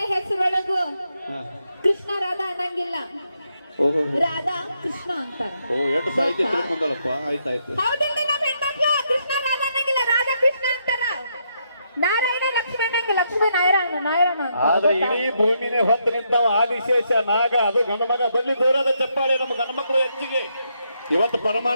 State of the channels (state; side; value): inverted; both; correlation -0.78